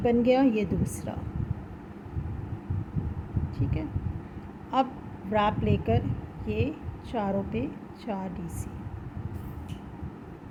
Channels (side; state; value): both; identical; correlation 1.00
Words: बन गया, ये दूसरा, ठीक है। अब व्रैप लेकर ये चारों पे 4 डीसी,